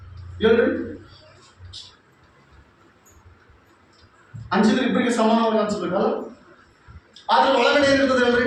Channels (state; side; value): identical; both; correlation 1.00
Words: ಹೇಳ್ರಿ? ಹಂಚಿದ್ರೆ ಇಬ್ಬರಿಗೆ ಸಮಾನವಾಗಿ ಹಂಚ್ಬೇಕಲ್ಲ. ಆದ್ರೆ ಒಳಗಡೆ ಏನಿರ್ತದೆ ಹೇಳ್ರಿ?